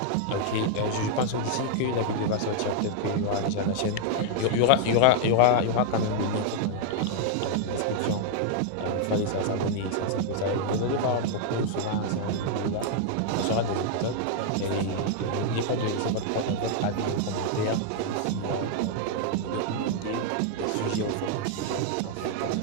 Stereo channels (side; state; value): both; different; correlation 0.00